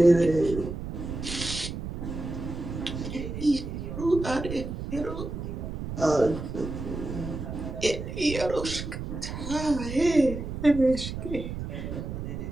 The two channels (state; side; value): noise; right; rumble, 6 dB below the sound